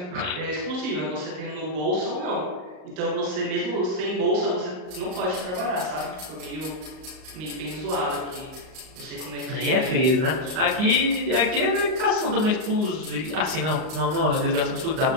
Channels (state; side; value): late; left; 38 ms